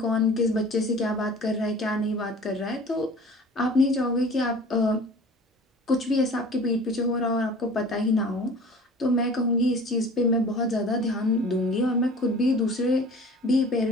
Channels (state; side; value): normal; both; correlation 0.44